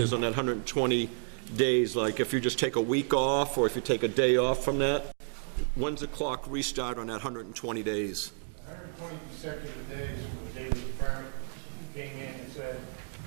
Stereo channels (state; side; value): silent; left; 57 dB below the other